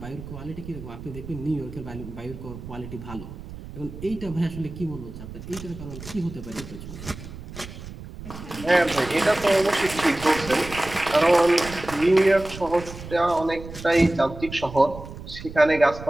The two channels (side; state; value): right; noise; rumble, 13 dB below the sound